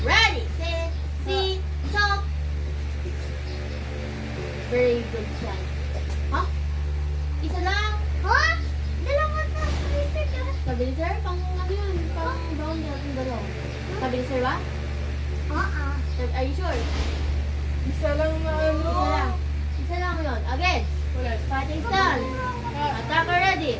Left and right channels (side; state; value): both; identical; correlation 1.00